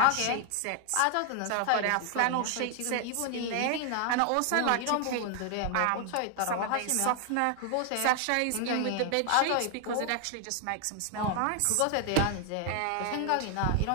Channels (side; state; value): both; different; correlation 0.00